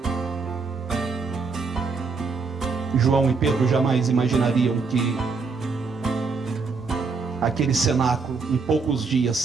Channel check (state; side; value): quieter; left; 4.7 dB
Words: João e Pedro jamais imaginariam que aquele cenáculo, em poucos dias,